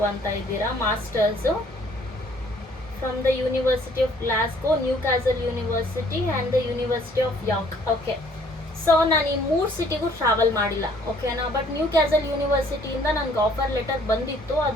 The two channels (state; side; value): normal; both; correlation 0.60